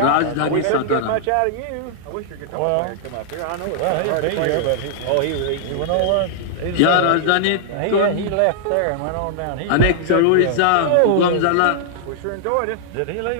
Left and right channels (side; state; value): both; different; correlation -0.01